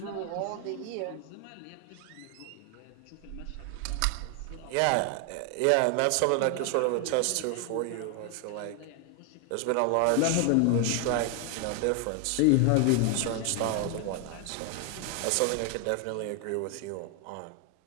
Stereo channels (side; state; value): both; different; correlation 0.00